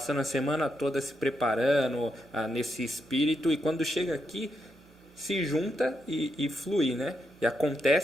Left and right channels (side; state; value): both; normal; correlation 0.82